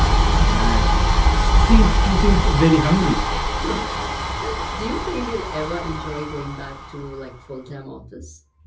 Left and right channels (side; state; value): both; identical; correlation 1.00